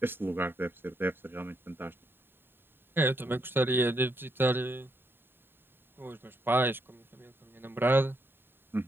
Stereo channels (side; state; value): left; late; 0.10 ms